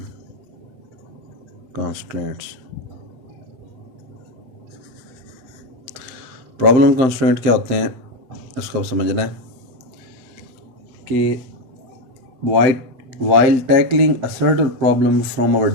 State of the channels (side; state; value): left; late; 7.6 ms